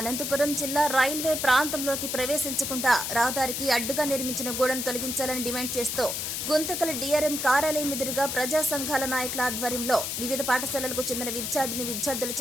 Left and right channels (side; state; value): left; noise; hiss, 3 dB below the sound